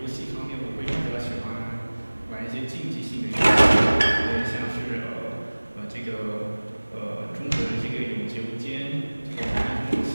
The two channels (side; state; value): both; inverted; correlation -1.00